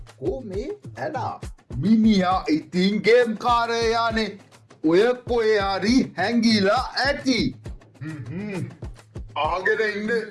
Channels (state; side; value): identical; both; correlation 1.00